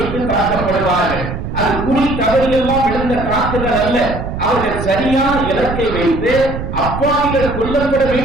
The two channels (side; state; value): right; noise; rumble, 6 dB below the sound